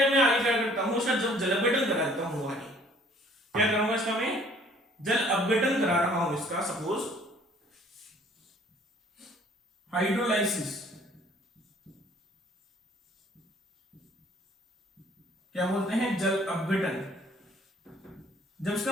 में आगे क्या करता हूं सर, जब जल अपघटन कराता हूं, आगे क्या करूंगा, इसका मैं जल अपघटन करा रहा हूं, इसका सपोज हाइड्रोलाइसिस, क्या बोलते हैं, जल अपघटन। जब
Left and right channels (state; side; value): normal; both; correlation 0.57